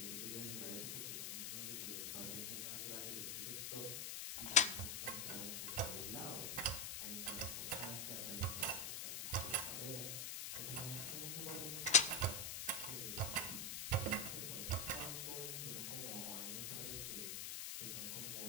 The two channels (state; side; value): noise; left; hiss, 3 dB below the sound